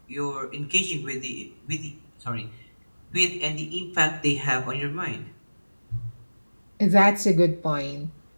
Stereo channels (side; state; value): both; inverted; correlation -1.00